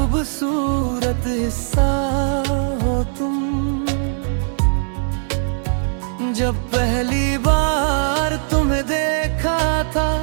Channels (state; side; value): silent; left; digital silence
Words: हिस्सा हो तुम। जब पहली बार तुम्हें देखा था,